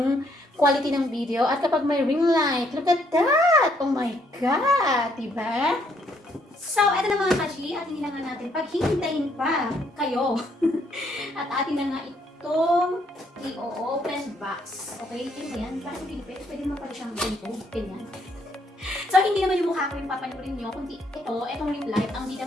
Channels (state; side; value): normal; both; correlation 0.70